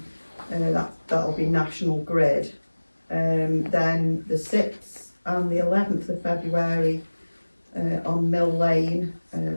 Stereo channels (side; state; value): both; inverted; correlation -1.00